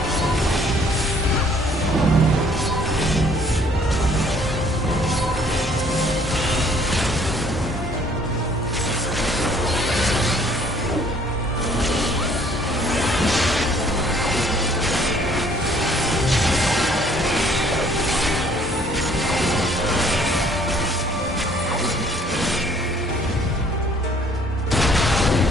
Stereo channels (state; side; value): normal; both; correlation 0.60